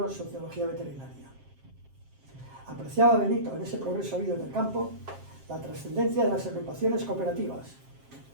Sociología Veterinaria. Apreciaba Benito en ese progreso habido en el campo la trascendencia de las agrupaciones cooperativas,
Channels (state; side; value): late; left; 7.5 ms